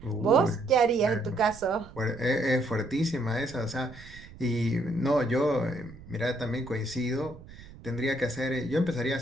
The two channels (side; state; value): right; noise; rumble, 18 dB below the sound